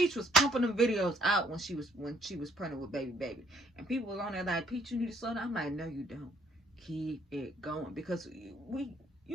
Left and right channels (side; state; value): both; normal; correlation 0.65